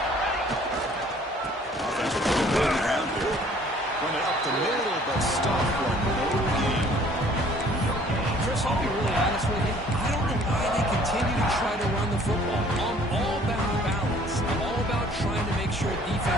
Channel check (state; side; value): normal; both; correlation 0.56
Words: Offense moving around here. Run it up the middle, but stop for no gain. Chris, I'll be really honest with you. I don't know why they continue to try to run the football. I'm all about balance. I'm all about trying to make sure